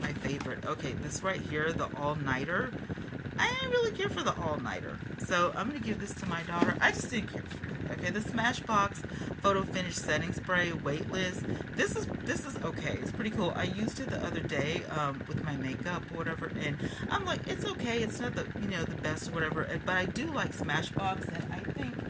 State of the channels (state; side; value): identical; both; correlation 1.00